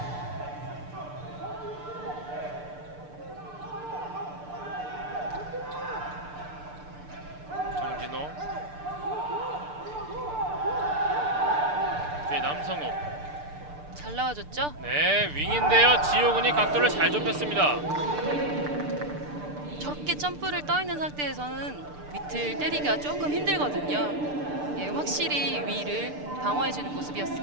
정진호, 뒤에 남성욱. 잘 나와줬죠? 네, 윙인데요. 지호군이 각도를 잘 좁혔습니다. 저렇게 점프를 떠 있는 상태에서는 밑을 때리기가 조금 힘들거든요. 예, 확실히 위를 방어해주는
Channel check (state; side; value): late; left; 6.7 ms